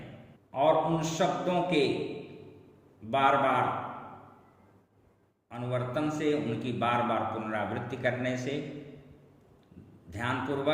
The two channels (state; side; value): identical; both; correlation 1.00